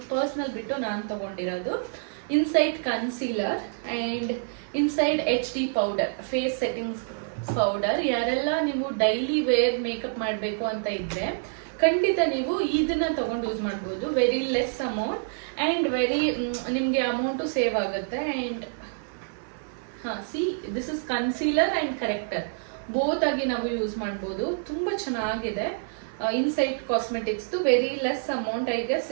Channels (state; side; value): silent; left; 57 dB below the other